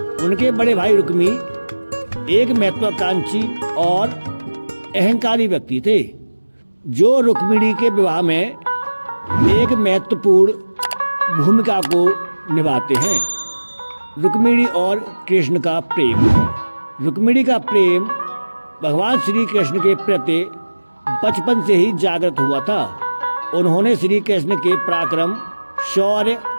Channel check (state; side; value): inverted; both; correlation -1.00